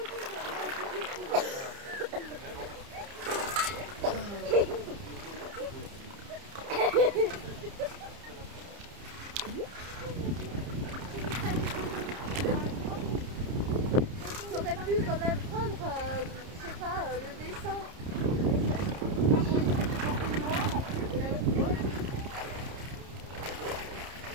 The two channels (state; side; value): late; left; 30 ms